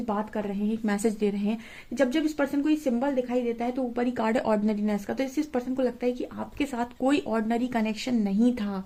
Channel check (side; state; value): both; identical; correlation 1.00